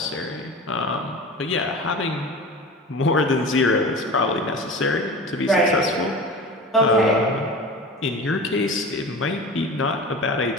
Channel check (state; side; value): normal; both; correlation 0.34